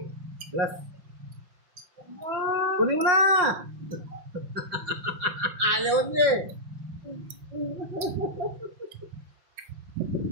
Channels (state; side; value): late; left; 5.8 ms